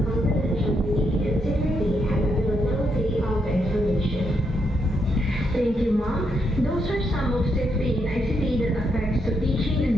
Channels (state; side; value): normal; both; correlation 0.79